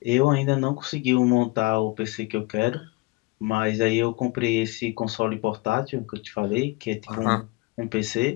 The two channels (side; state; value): right; quieter; 23.7 dB